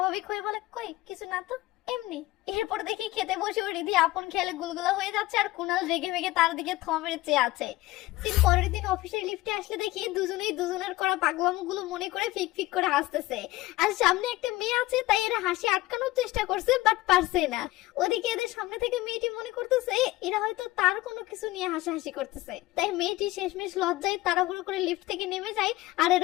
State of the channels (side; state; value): right; quieter; 18.1 dB